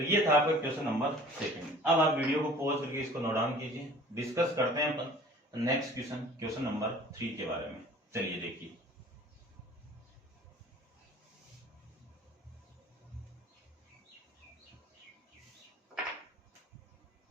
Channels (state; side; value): normal; both; correlation 0.47